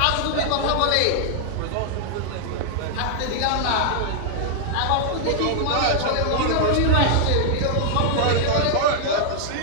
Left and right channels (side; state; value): both; different; correlation -0.01